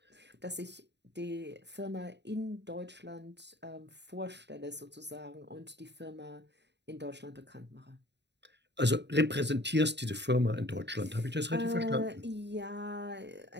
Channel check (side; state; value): left; late; 0.50 ms